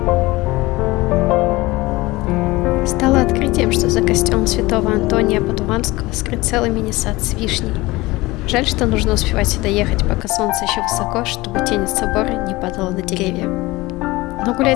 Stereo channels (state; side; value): quieter; right; 20.8 dB